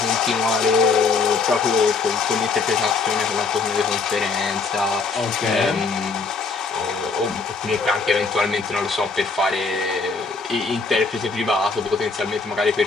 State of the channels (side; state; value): right; quieter; 4.4 dB